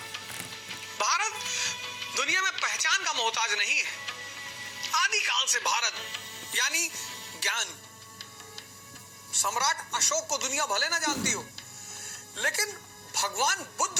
भारत दुनिया में पहचान का मोहताज नहीं है। आदिकाल से भारत यानी ज्ञान। सम्राट अशोक को दुनिया भले ना जानती हो, लेकिन भगवान बुद्ध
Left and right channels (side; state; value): both; identical; correlation 1.00